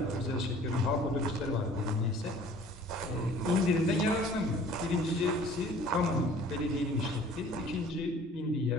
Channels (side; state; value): both; normal; correlation 0.51